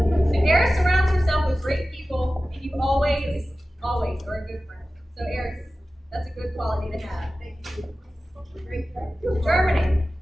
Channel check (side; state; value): both; normal; correlation 0.95